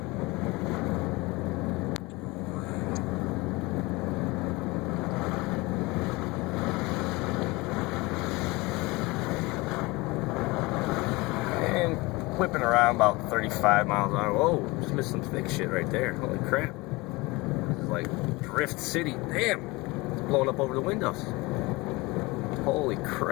And whipping around about 35 miles an hour. Whoa, just missed some thick shit right there. Holy crap. This is like Drift City. Damn. Blowing up over the windows. Holy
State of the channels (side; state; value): right; quieter; 22.8 dB